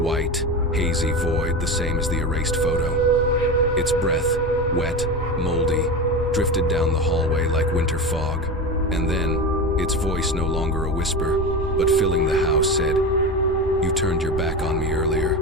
hazy void the same as the erased photo. Its breath, wet, moldy, drifted down the hallway like winter fog, and then, its voice no longer a whisper, but filling the house said, "You turned your back on me earlier."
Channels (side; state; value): both; normal; correlation 0.24